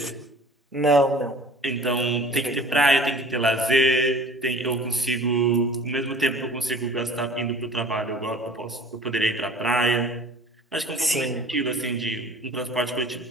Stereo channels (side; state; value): both; normal; correlation 0.45